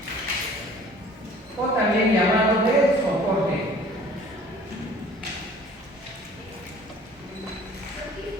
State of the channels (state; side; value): normal; both; correlation 0.50